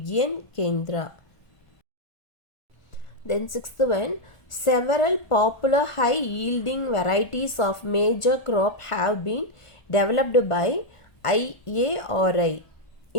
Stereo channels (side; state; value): right; late; 1.4 ms